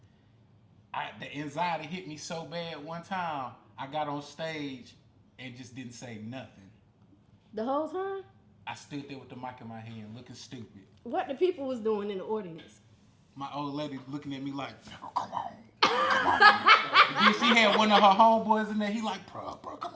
the anxiety hit me so bad one time. I got on stage and just didn't say nothing. The whole time? I stood there with the mic in my hand, looking stupid. What the people was doing in the audience? My old lady looking at me like, come on. Then she had one of her homeboys in there. He like, bro, come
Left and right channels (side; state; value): both; identical; correlation 1.00